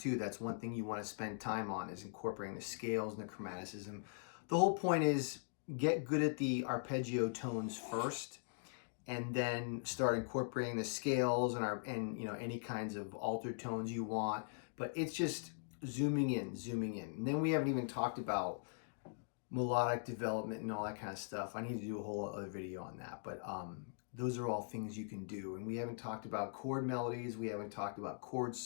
That's one thing you want to spend time on, is incorporating the scales and the chromaticism. The whole point is get good at the arpeggio tones first, and then start incorporating the scales and you know, any kinds of altered tones you want. But it's just zooming in. And then we haven't even talked about melodic development and all that kind of stuff. I need to do a whole other video on that. But those are all things you can do. And we haven't talked about chord melodies. We haven't talked about chord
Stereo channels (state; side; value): silent; right; digital silence